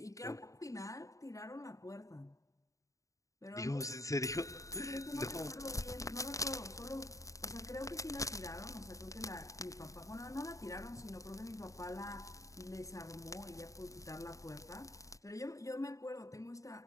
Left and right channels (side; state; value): right; late; 0.16 ms